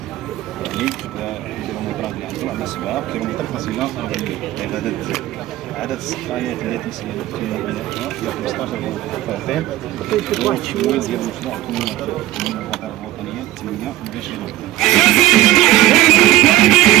يعني الكيلومترات اللي عندنا عندنا 7 كيلومتر فاصلة 40 يعني عدد السقايات اللي تيسير في بنائها هي 15 فرد والتمويل ديال المشروع من الوزارة الوطنية 28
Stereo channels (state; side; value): quieter; left; 15.5 dB